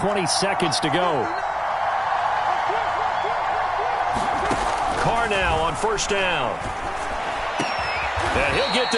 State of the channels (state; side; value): identical; both; correlation 1.00